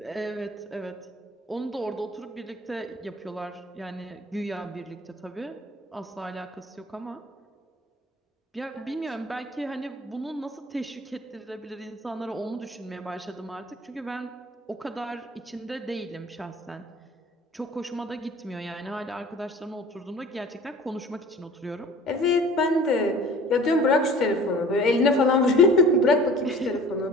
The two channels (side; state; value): both; normal; correlation 0.46